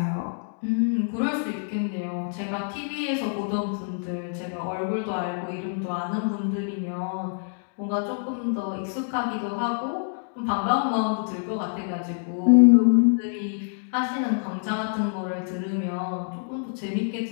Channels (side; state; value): right; silent; digital silence